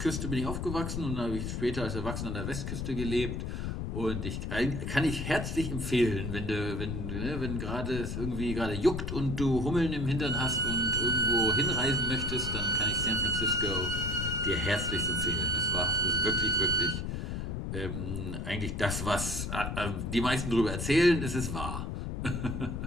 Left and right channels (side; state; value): left; noise; rumble, 3 dB below the sound